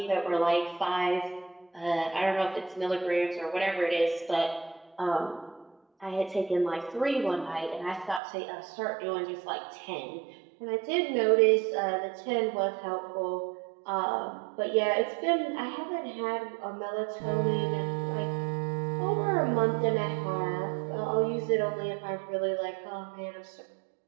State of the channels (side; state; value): left; drops out; at 8.2 s